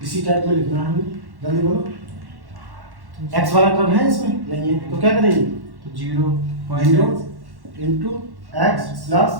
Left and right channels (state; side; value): late; left; 1.1 ms